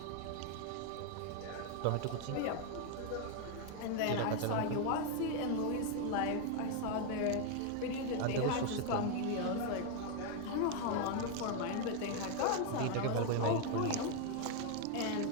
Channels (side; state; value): both; different; correlation 0.01